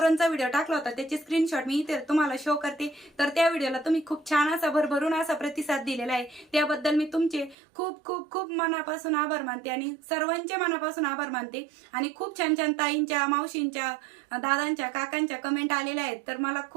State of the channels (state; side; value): drops out; left; at 7.6 s